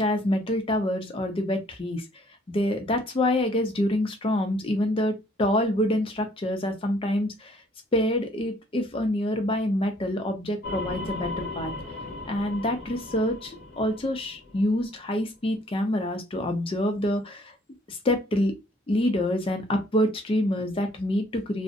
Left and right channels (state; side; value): normal; both; correlation 0.61